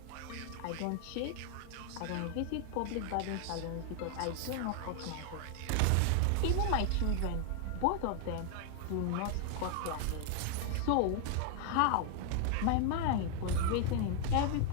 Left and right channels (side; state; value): both; different; correlation 0.00